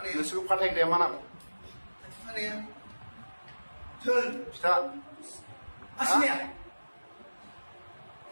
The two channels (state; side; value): inverted; both; correlation -1.00